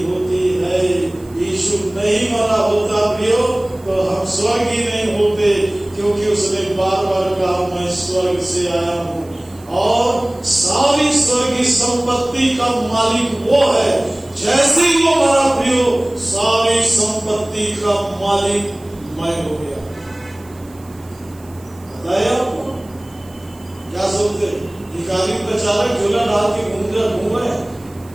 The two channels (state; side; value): noise; right; hiss, 26 dB below the sound